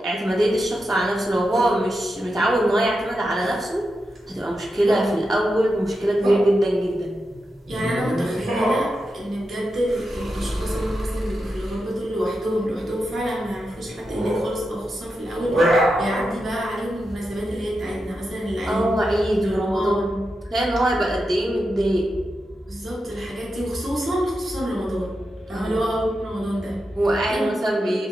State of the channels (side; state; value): both; normal; correlation 0.88